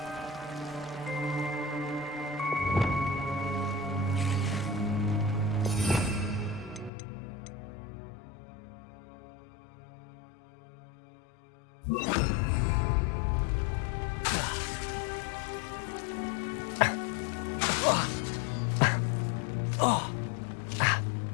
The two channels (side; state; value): right; drops out; at 6.9 s